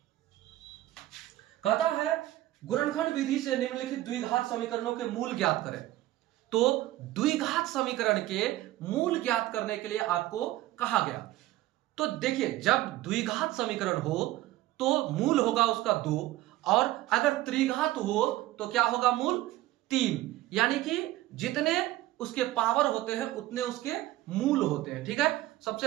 कहता है गुणनखंड विधि से निम्नलिखित द्विघात समीकरणों के मूल ज्ञात करें। तो द्विघात समीकरण के मूल ज्ञात करने के लिए आपको कहा गया। तो देखिए, जब द्विघात समीकरण हो तो मूल होगा उसका 2, और अगर त्रिघात हो तो क्या होगा, मूल 3। यानी कि जितने उसके पावर होते हैं उतने उसके मूल होते हैं, ठीक है।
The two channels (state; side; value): quieter; left; 16.0 dB